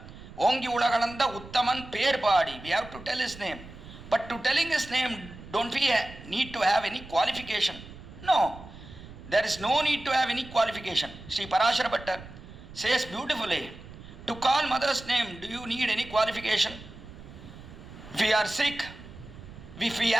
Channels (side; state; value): right; noise; rumble, 16 dB below the sound